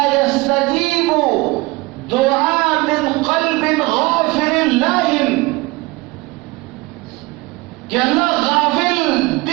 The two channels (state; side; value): quieter; left; 22.9 dB